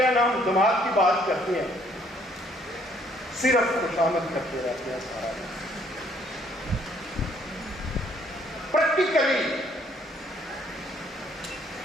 ہیں، نہ ہم دماغ کی بات کرتے ہیں، صرف خوشامد کرتے رہتے ہیں سارا دن. پریکٹیکلی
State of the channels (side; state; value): both; normal; correlation 0.64